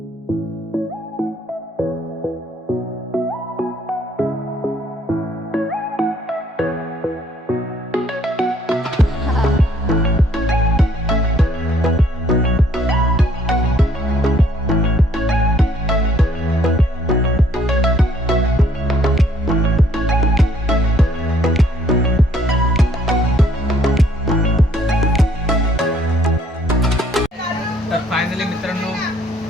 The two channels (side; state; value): both; normal; correlation 0.63